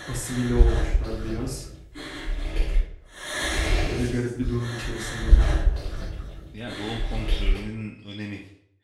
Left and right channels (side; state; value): both; identical; correlation 1.00